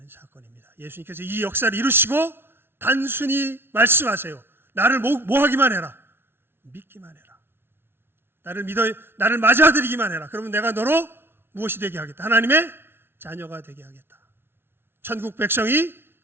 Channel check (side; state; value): left; late; 0.11 ms